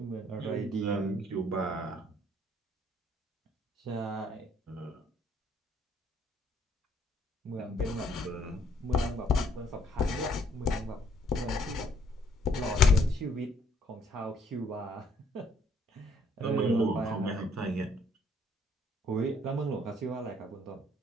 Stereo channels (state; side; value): normal; both; correlation 0.66